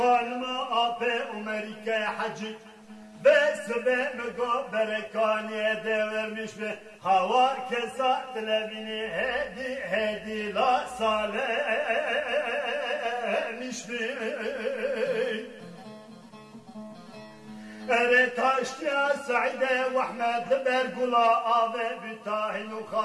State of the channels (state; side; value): identical; both; correlation 1.00